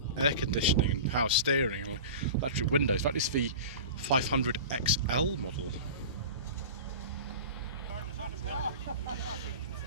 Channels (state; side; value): inverted; both; correlation -0.34